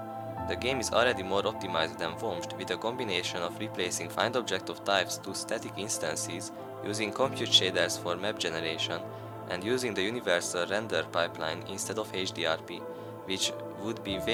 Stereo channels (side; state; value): both; identical; correlation 1.00